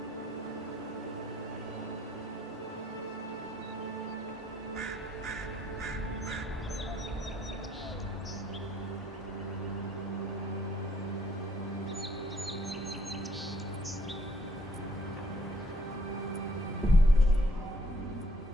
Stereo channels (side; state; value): both; normal; correlation 0.65